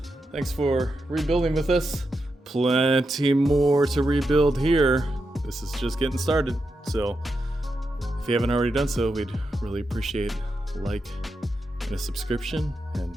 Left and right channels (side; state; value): both; normal; correlation 0.86